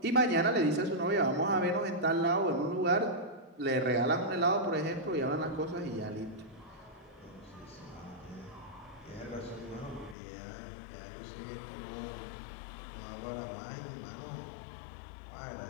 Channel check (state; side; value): drops out; right; at 10.2 s